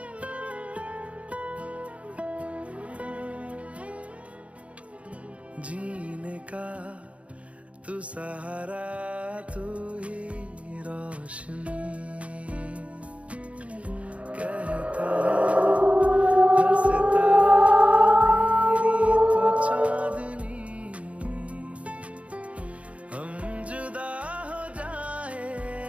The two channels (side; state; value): left; late; 0.064 ms